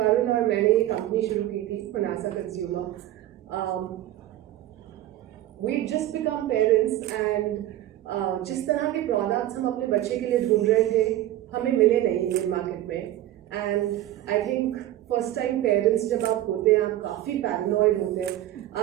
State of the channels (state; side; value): quieter; left; 13.8 dB